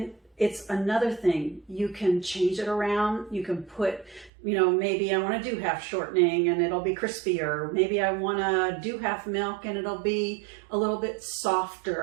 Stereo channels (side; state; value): left; drops out; at 4.3 s